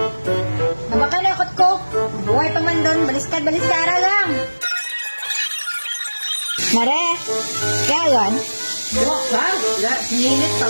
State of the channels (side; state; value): both; inverted; correlation -1.00